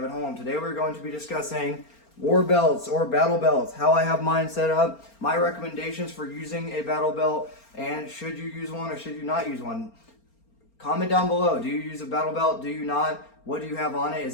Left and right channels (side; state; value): right; late; 4.3 ms